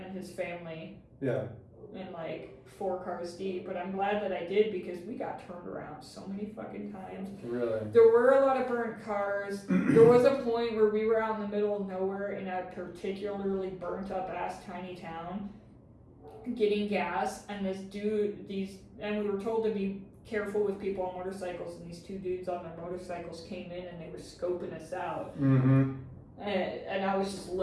his family. Yeah. In like 4 cars deep. But I'm glad that I did because we got turned around so many fucking times. Really? There were a lot of burnt cars. There was a point where we were out in the middle of nowhere in a particularly burnt up ass tiny town getting gas, and and we were told to be careful with people on motorcycles, and these 2 dudes on their motorcycles came in and they were scoping us out. Mm-hmm. And I was just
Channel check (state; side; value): identical; both; correlation 1.00